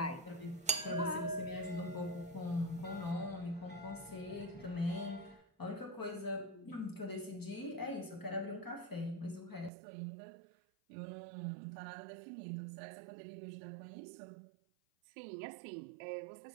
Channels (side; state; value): left; drops out; at 9.7 s